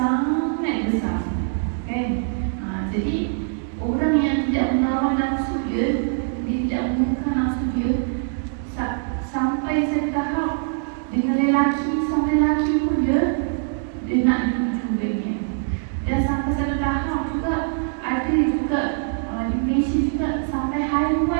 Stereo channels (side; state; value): left; silent; digital silence